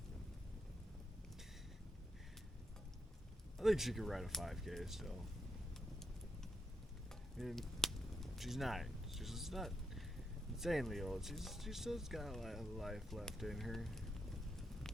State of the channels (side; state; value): both; normal; correlation 0.82